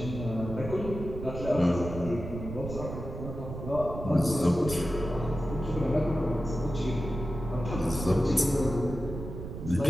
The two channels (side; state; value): right; noise; rumble, 8 dB below the sound